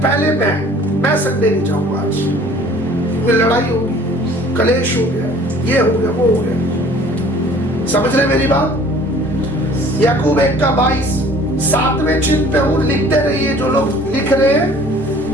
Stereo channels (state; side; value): normal; both; correlation 0.51